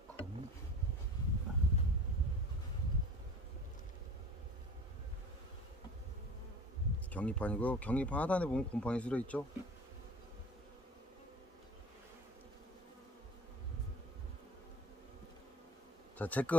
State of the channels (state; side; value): normal; both; correlation 0.43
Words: 경리판이고요. 경리판 하단에 보면 곰팡이 쓸어 있죠. 자, 제